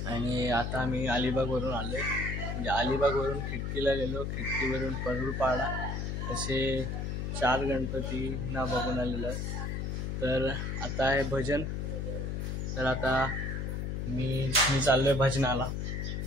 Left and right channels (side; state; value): left; noise; hum, 2 dB below the sound